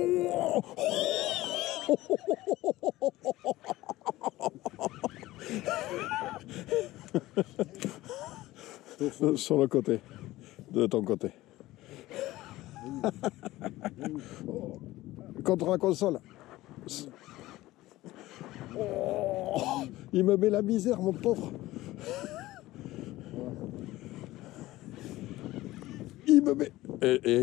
Sur le côté, de ton côté. Contre la console. Oh, il me met la misère, mon pauvre. Il me met...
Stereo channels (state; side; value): quieter; right; 17.2 dB